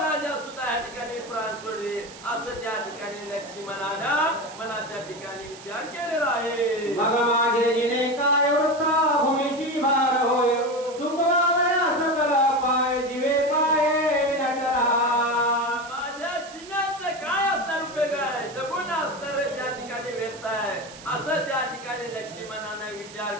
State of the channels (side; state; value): right; noise; hiss, 17 dB below the sound